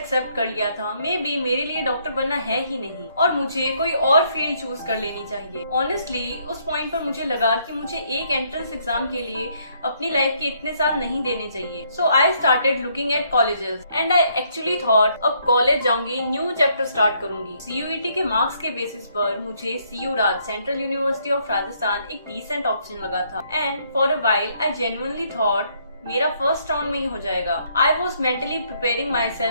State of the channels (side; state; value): both; inverted; correlation -0.69